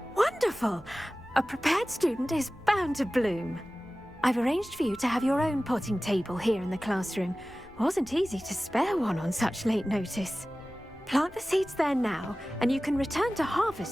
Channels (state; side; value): noise; left; rumble, 26 dB below the sound